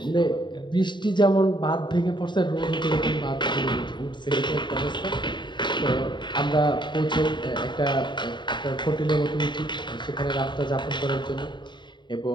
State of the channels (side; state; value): right; late; 0.22 ms